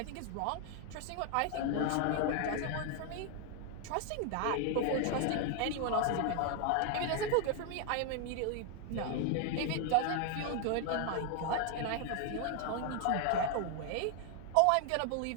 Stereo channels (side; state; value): both; different; correlation 0.00